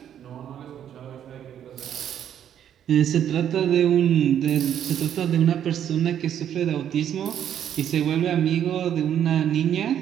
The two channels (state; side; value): quieter; left; 9.8 dB